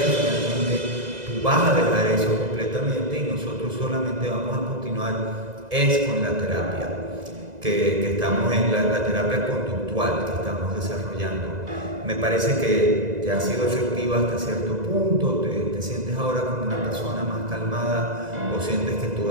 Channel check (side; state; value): left; late; 2.0 ms